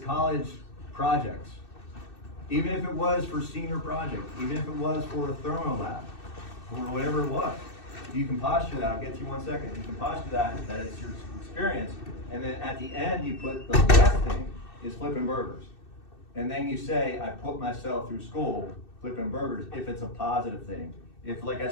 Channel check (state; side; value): late; right; 2.6 ms